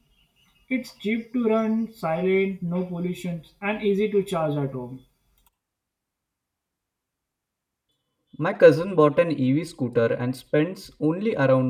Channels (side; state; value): both; identical; correlation 1.00